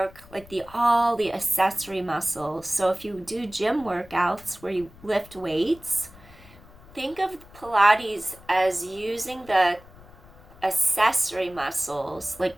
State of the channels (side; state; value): left; noise; rumble, 22 dB below the sound